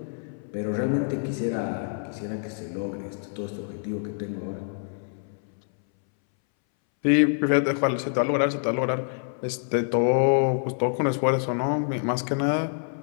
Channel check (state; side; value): silent; right; 61 dB below the other